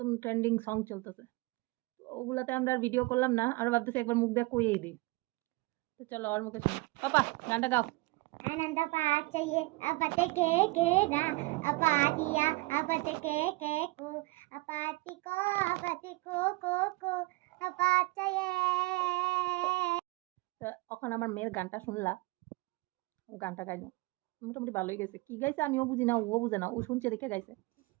ট্রেন্ডিং সং চলতেছে। তো ওগুলাতে আমরা আর ভিডিও করলাম না, আর ভাবতেছি একবার মুখ দিয়ে কইয়েই দিই। তো চলো ওর মুখে শুনি। পাপা গানটা গাও। आनंद पाचये अपते के ना अपातिया अपते के को अपति को अपाचये। তো এখন আমার মেয়ের গানটা শুনলা, ও গানটা গাইলো মোটামুটি ভালোই গেছে। কি গাইছে আমিও বুঝি না, ও বুঝে না, ও শুনছে দেখে গাইছে।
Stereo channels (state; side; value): quieter; left; 23.3 dB